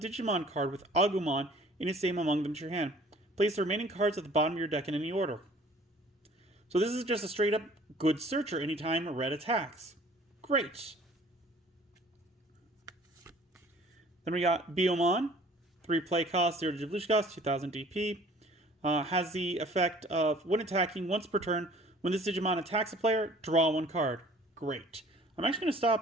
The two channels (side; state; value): both; normal; correlation 0.52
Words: card with Agumon in its name among them to your hand. Place the remaining cards at the bottom of your deck in any order. So this is just a straight up good searcher anytime red attacks. Great. Then we got Biomon. 3 play cost, 0 digivolution cost, 2000 DP. Has the effect of when attacking once per turn, when this Digimon attacks a player, draw 1 card. Great. I'm actually going to